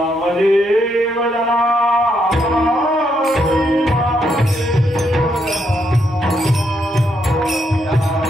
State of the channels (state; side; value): normal; both; correlation 0.77